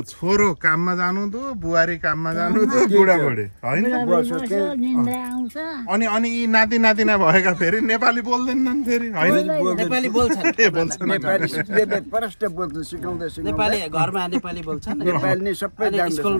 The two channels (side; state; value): both; inverted; correlation -1.00